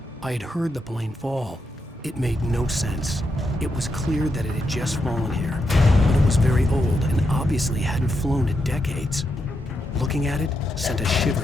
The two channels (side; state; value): both; normal; correlation 0.83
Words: I had heard the plane fall. It made no sense. It was clear that it had just fallen here, but it was very old and obviously hadn't flown in decades. Looking at it sent a shiver